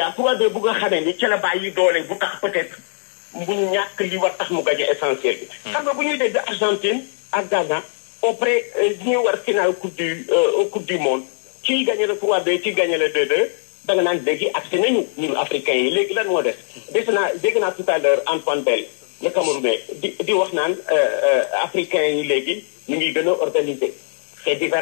3-2 bu nga xamee ni ci la bàyyi doole bu tax peut-être mu ñàkk li war tax mu gagné essentiel bi xam nga bu ñuy dégg Argentine ak Ghana auprès ñuy war finale coupe du monde kii gagné le 3-2 kii gagné le 2-2 da nga naan léegi accès nañu ñun africains yi léegi lan moo def dégg naa tout à l'heure Antoine Bell le Camerounais di wax naan africains yi léegi ñu ngi gën a organiser c'est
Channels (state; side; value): silent; right; digital silence